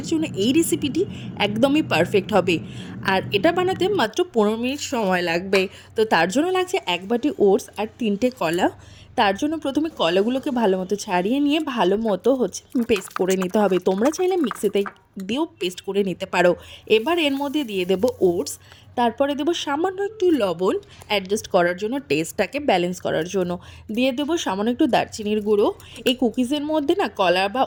জন্য এই রেসিপিটি একদমই পারফেক্ট হবে। আর এটা বানাতে মাত্র 15 মিনিট সময় লাগবে। তো তার জন্য লাগছে 1 বাটি ওটস আর 3টে কলা। তার জন্য প্রথমে কলাগুলোকে ভালো মতো ছাড়িয়ে নিয়ে ভালো মতো পেস্ট করে নিতে হবে। তোমরা চাইলে মিক্সিতে দিয়েও পেস্ট করে নিতে পারো। এবার এর মধ্যে দিয়ে দেবো ওটস, তারপরে দেবো সামান্য একটু লবণ অ্যাডজাস্ট করার জন্য, টেস্টটাকে ব্যালেন্স করার জন্য। দিয়ে দেবো সামান্য একটু দারচিনির গুঁড়ো। এই কুকিজের মধ্যে না কলা বা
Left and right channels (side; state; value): both; identical; correlation 1.00